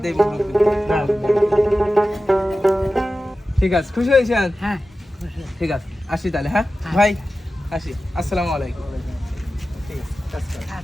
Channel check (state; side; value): normal; both; correlation 0.94